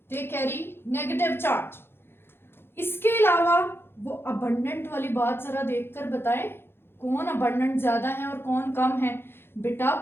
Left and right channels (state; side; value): late; right; 0.11 ms